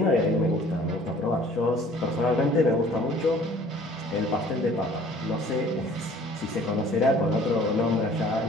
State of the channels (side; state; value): both; normal; correlation 0.52